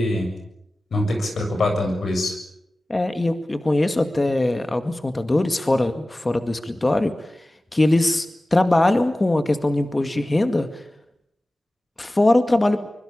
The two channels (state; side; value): normal; both; correlation 0.97